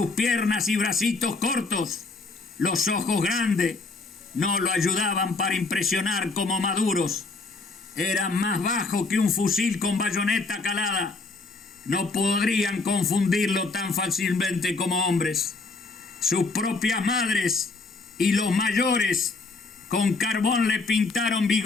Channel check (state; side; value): quieter; right; 3.8 dB